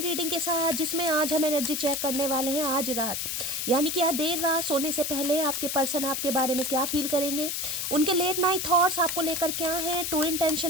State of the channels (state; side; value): noise; left; hiss, 2 dB below the sound